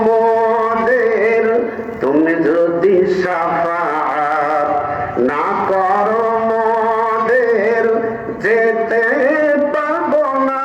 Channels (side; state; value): both; identical; correlation 1.00